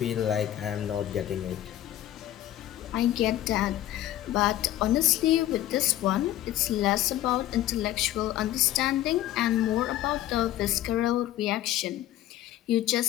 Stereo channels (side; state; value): right; quieter; 13.5 dB